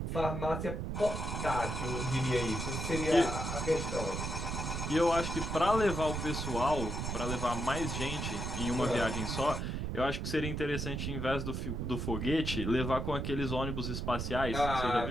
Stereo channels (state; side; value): noise; right; rumble, 3 dB below the sound